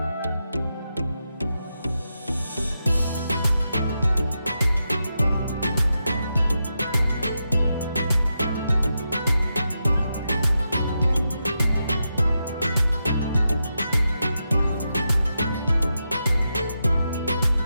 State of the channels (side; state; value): both; inverted; correlation -0.87